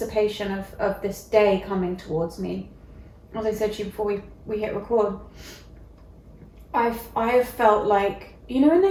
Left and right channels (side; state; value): both; identical; correlation 1.00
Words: of this day coming towards me. As I said to you before we hit record, I've felt like, you know in